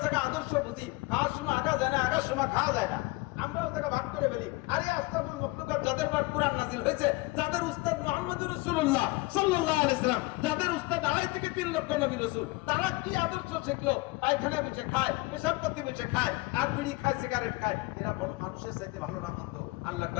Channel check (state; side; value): quieter; right; 22.7 dB